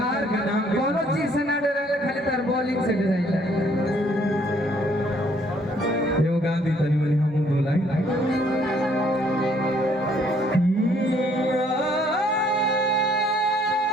का नाम कोनो चीज से ना डरे, खाली तार बॉलिंग से डराइला। ये गांधी तनी मनी हम दो लाइन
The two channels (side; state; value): both; normal; correlation 0.64